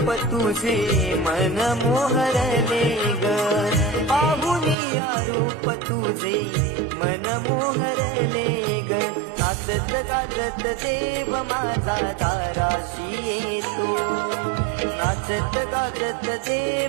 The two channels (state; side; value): drops out; left; at 4.8 s